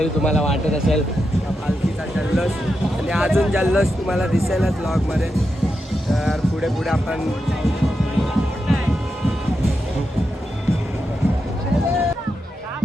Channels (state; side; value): normal; both; correlation 0.87